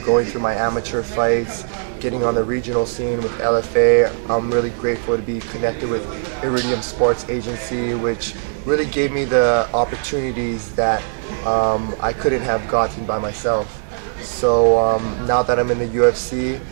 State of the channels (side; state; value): left; silent; 66 dB below the other